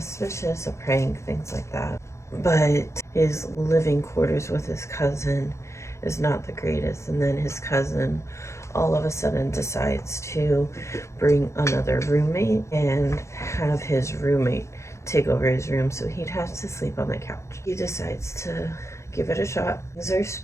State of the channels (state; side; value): late; right; 0.14 ms